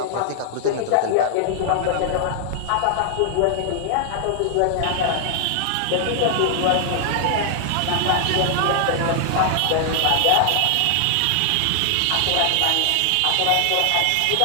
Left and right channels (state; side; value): different; both; correlation 0.00